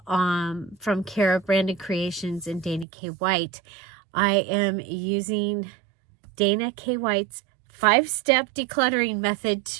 from Cara Brandon Creations and Dana K. White. I am using Dana K. White's 5-step decluttering method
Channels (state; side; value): drops out; left; at 2.9 s